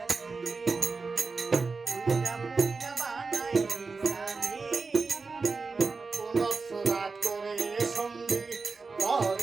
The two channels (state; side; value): quieter; left; 4.3 dB